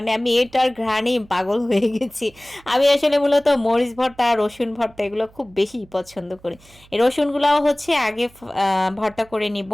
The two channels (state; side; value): noise; right; hum, 27 dB below the sound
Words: আমি এটার ঘ্রাণেই পাগল হয়ে গেছি। আমি আসলে মূলত মরিচ ভর্তা আর রসুন ভর্তা এগুলো খুব বেশি পছন্দ করি। এই রসুনগুলাও হচ্ছে আগে ভর্তা করে নিব।